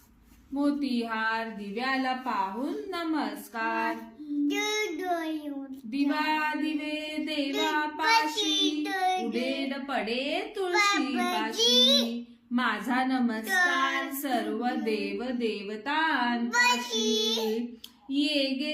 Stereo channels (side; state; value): both; identical; correlation 1.00